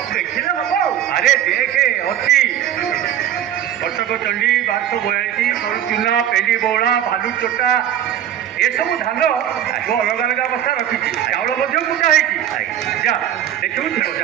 ଦେଖିଲେ ହବ ଆରେ ଦେଖେ ଅଛି କଟକ ଚଣ୍ଡୀ 1242 ଚୁନା ପେଣ୍ଡି ବଉଳା ଭାଲୁ ଚୋଟା ଏସବୁ ଧାନ ମୁଁ ଅଲଗା ଅଲଗା ଅବସ୍ଥା ରଖିଛି ଚାଉଳ ମଧ୍ୟ କୁଟା ହେଇଛି ଯା ଦେଖିବୁ ଥିବ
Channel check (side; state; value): left; quieter; 10.7 dB